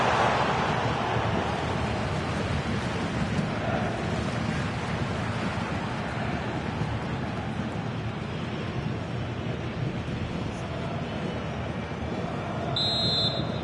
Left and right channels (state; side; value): identical; both; correlation 1.00